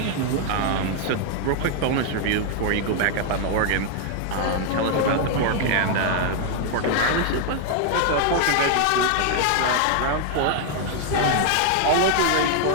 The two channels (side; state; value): both; different; correlation 0.00